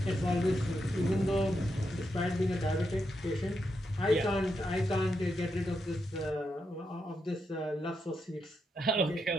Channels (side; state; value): both; normal; correlation 0.83